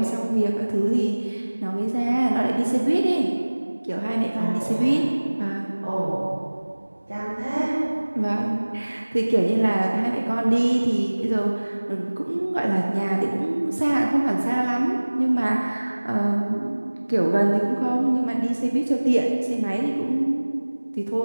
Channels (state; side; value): inverted; both; correlation -1.00